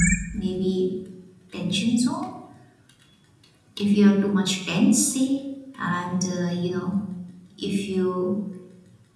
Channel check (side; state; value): both; identical; correlation 1.00